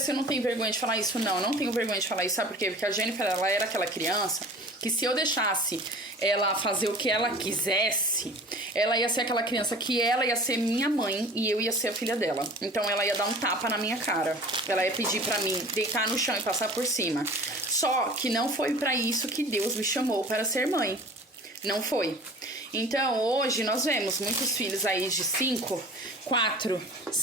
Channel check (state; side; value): normal; both; correlation 0.42